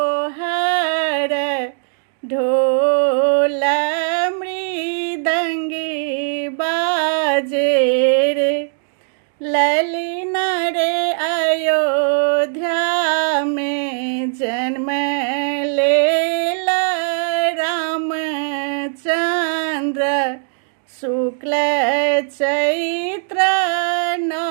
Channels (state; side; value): silent; left; digital silence